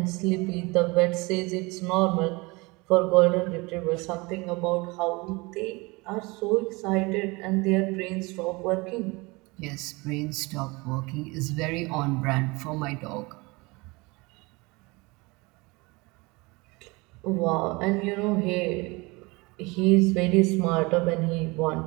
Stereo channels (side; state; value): left; quieter; 25.1 dB